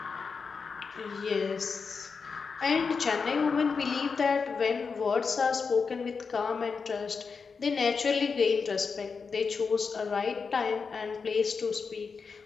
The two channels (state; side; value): quieter; right; 5.2 dB